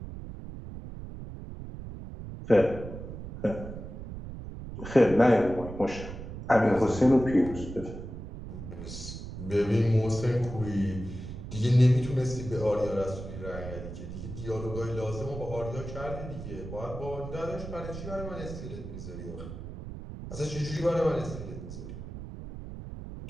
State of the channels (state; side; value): noise; right; rumble, 10 dB below the sound